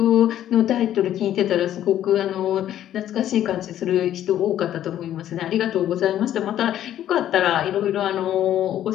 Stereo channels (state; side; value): quieter; right; 11.6 dB